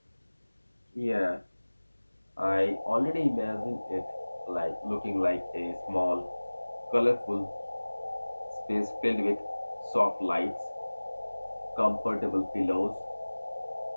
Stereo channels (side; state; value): both; inverted; correlation -1.00